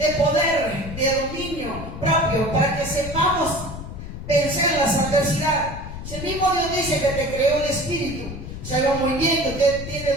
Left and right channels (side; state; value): left; noise; rumble, 9 dB below the sound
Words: poder, de dominio propio, para que sepamos vencer las adversidades. Si el mismo Dios dice que te creó el espíritu, sabe muy bien que usted